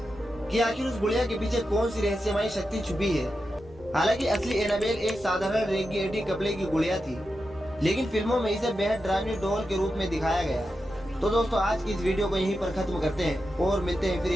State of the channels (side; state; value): both; normal; correlation 0.89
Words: कि आखिर उस गुड़िया के पीछे कौन सी रहस्यमयी शक्ति छुपी है। हालांकि असली एनाबेल एक साधारण रेडिएटी कपड़े की गुड़िया थी, लेकिन फिल्मों में इसे बेहद डरावनी डॉल के रूप में दिखाया गया। तो दोस्तों, आज की इस वीडियो को यहीं पर खत्म करते हैं और मिलते हैं फिर